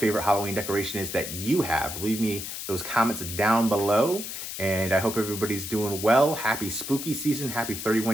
Halloween decoration is that you have. Leave me those comments down below. And I hope everybody's doing well. Happy spooky season. Happy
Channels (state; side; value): noise; left; hiss, 7 dB below the sound